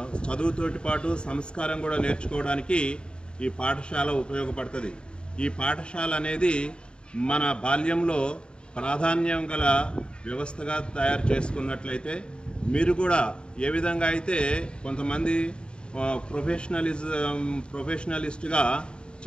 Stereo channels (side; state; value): right; late; 0.052 ms